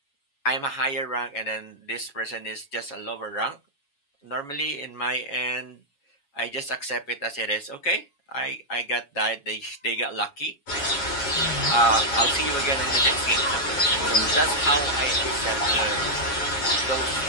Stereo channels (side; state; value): right; late; 7.2 ms